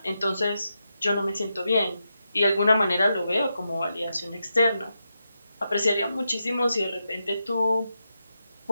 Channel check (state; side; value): inverted; both; correlation -0.87